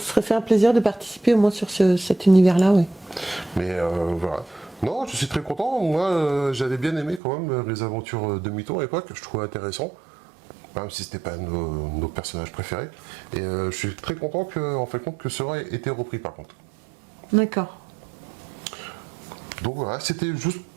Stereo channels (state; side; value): drops out; left; at 7.2 s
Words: fait un plaisir de participer au moins sur cet univers-là, oui. Mais voilà. Non, je suis très content. Moi, j'avais bien aimé quand même les aventures de Mitton à l'époque. Je trouvais intéressant, même si c'était pas nos personnages préférés. Et je suis très content en fait compte que cela ait été repris par contre. D'accord. Donc voilà, c'était juste